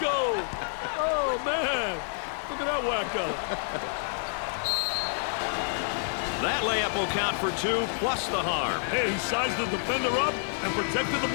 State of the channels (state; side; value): silent; right; 59 dB below the other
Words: Oh, man. Look at that wacko. That layup will count for two, plus the harm. Hey, he sized the defender up and protected the